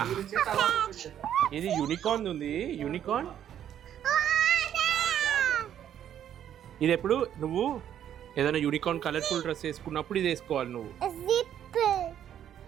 ఇది యూనికార్న్ ఉంది, యూనికార్న్. ఇది ఎప్పుడు నువ్వు ఏదైనా యూనికార్న్ కలర్ఫుల్ డ్రెస్ వేసుకున్నప్పుడు ఇది వేసుకోవాలి నువ్వు. జిప్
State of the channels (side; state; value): left; quieter; 10.1 dB